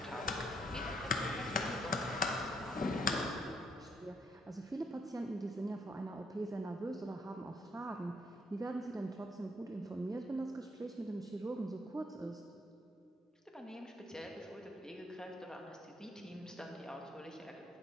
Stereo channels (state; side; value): normal; both; correlation 0.70